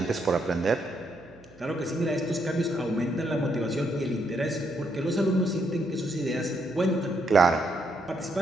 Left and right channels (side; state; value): right; noise; hum, 25 dB below the sound